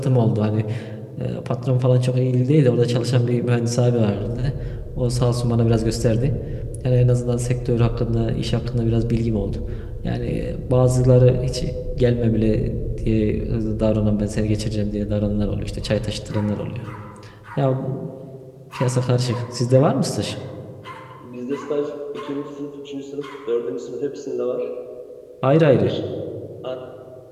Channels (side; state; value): both; identical; correlation 1.00